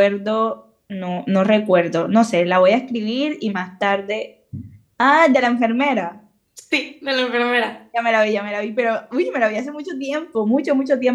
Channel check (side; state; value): both; identical; correlation 1.00